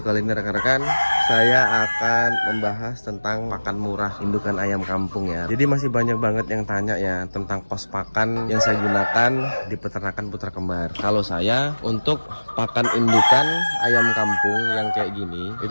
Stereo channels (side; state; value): both; inverted; correlation -1.00